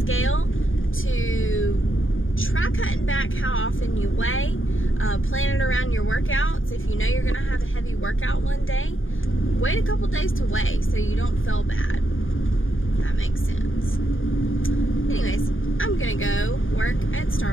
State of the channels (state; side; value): late; right; 0.58 ms